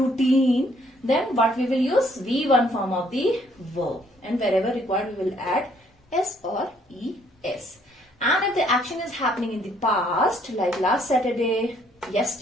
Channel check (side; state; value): both; normal; correlation 0.65